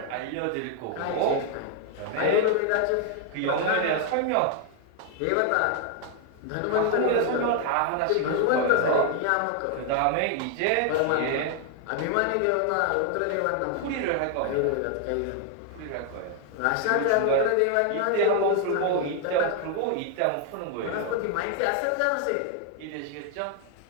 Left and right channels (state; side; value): different; both; correlation 0.00